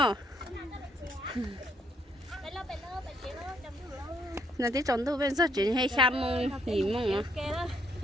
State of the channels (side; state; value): both; normal; correlation 0.70